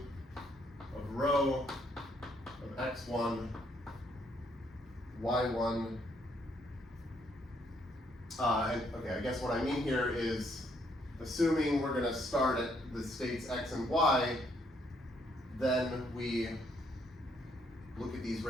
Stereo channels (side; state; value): both; normal; correlation 0.70